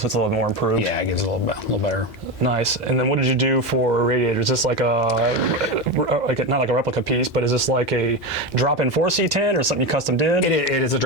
it's a little more improved. Yeah, it gives it a little better. Nice. And then what did you do for radiators? Is this like not like a replica piece, but is this like a drop-in for C10 or something you custom did? It is a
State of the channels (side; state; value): both; normal; correlation 0.17